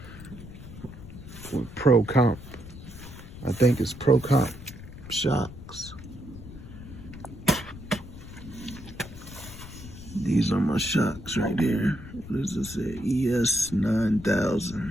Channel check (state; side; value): noise; left; rumble, 14 dB below the sound